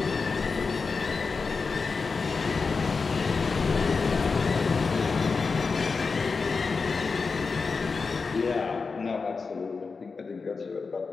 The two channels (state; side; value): quieter; right; 4.7 dB